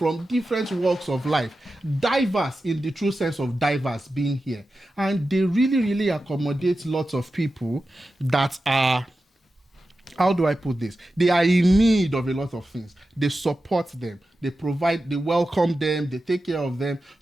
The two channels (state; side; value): normal; both; correlation 0.92